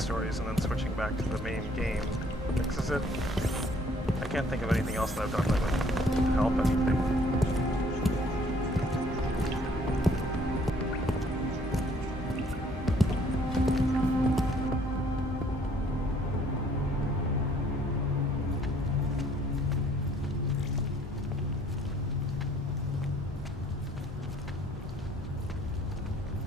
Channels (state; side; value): normal; both; correlation 0.61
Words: stories and then switching back to the main game fixes it. I can't think of anything else that I've done that would help anything.